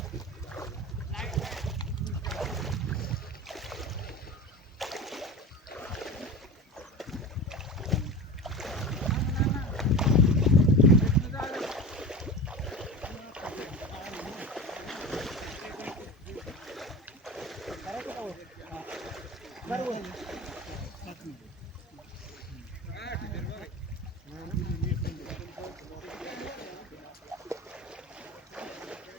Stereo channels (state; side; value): normal; both; correlation 0.30